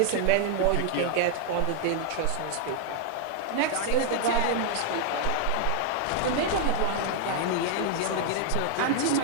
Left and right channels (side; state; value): both; different; correlation 0.00